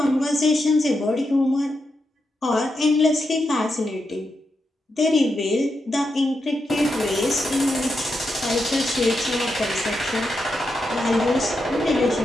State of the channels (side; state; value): both; normal; correlation 0.85